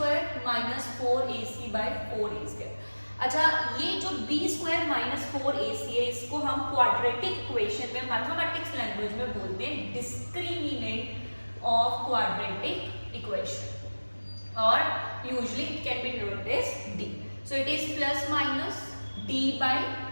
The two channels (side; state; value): both; inverted; correlation -1.00